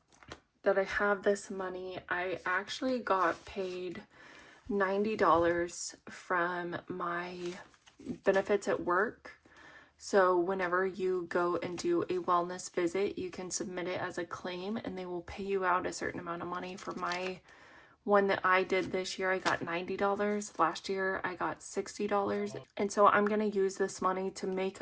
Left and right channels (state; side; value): identical; both; correlation 1.00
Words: that I have this money, I actually got paid $90 from my benefits at work. So whenever you go and do a wellness visit, you can submit it as a claim and they will pay you out a certain amount of money. For my one that I did this year, I got $90. Last year, I got $60. And so I'm going to use this money to make